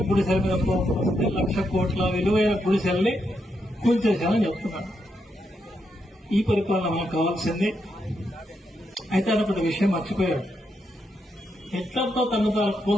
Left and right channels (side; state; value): both; normal; correlation 0.81